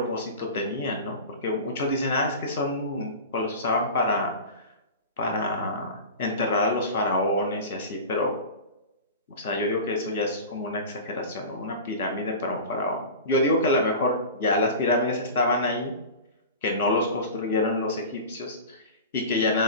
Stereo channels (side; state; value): both; inverted; correlation -0.32